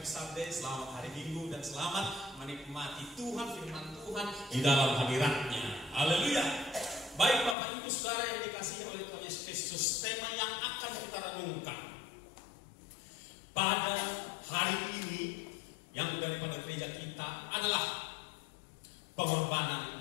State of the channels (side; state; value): right; drops out; at 7.6 s